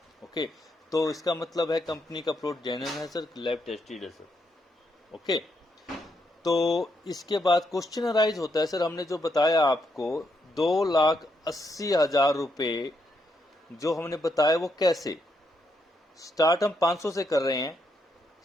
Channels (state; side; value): normal; both; correlation 0.79